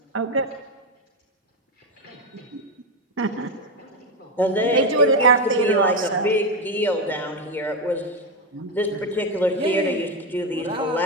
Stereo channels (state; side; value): normal; both; correlation 0.10